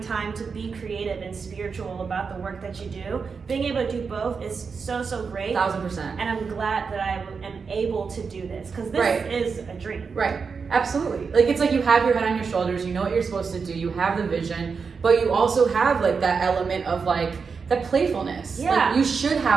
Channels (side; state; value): left; quieter; 5.4 dB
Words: time to be creative and spiritual about the work that you do. Being able to do both is so great. 1000%. And I'm glad that I am able to do this, because this is a dream. Right. Absolutely. Like, it's like you have your head on your shoulders, you know what you're supposed to do, you have the vision, but you also have like that element of like that playfulness. Yeah. Like, you should